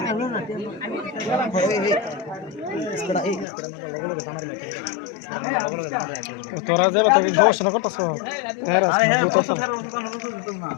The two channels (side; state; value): right; drops out; at 3.5 s